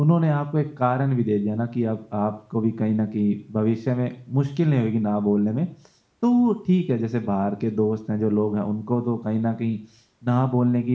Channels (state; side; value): identical; both; correlation 1.00